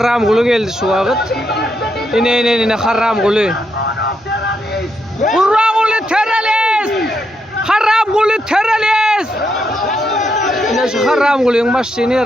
kulu geldi şu vakit. İne haram kulu. Kurban kulu terörist! Haram kulu terörist! Yine şu haram kılıyorsun başlayın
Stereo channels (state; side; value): normal; both; correlation 0.80